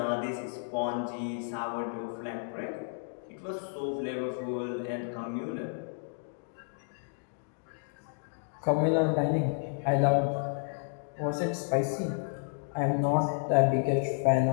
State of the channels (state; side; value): silent; right; digital silence